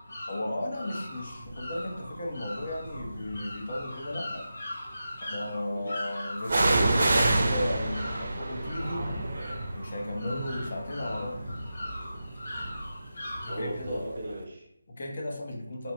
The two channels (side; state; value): both; inverted; correlation -0.90